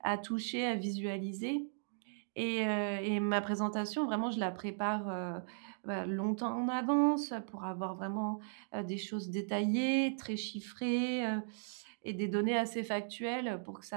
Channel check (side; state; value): left; silent; digital silence